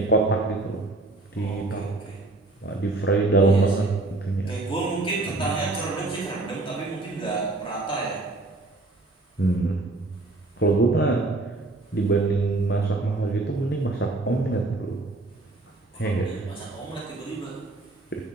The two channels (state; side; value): quieter; left; 3.0 dB